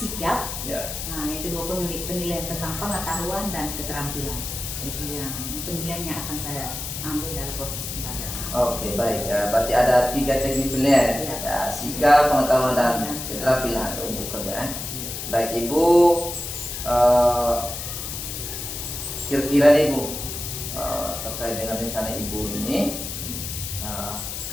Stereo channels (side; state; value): left; noise; hiss, 6 dB below the sound